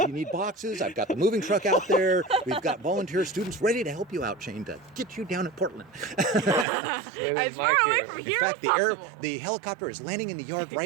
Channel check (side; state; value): left; drops out; at 6.7 s